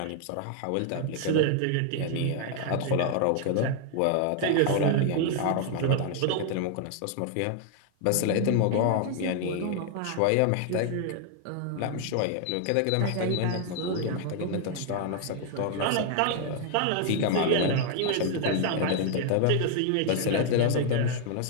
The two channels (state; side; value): different; both; correlation 0.00